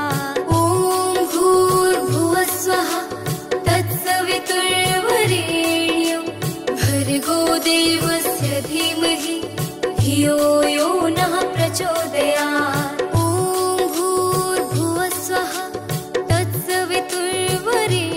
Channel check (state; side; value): identical; both; correlation 1.00